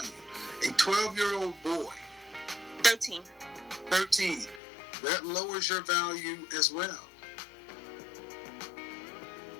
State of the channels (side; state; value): right; drops out; at 4.6 s